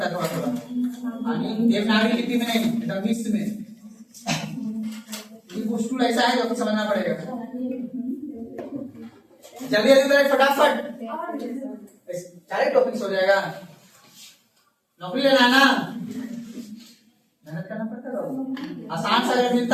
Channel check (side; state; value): both; identical; correlation 1.00